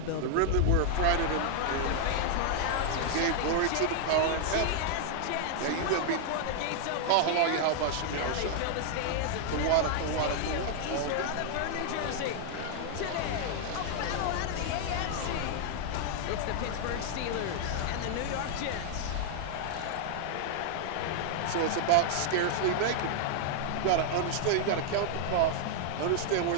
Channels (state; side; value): different; both; correlation -0.01